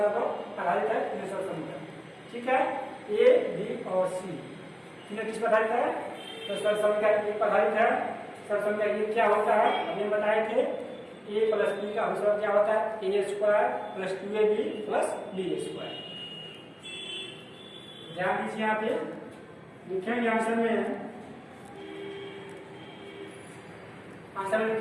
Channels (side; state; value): both; identical; correlation 1.00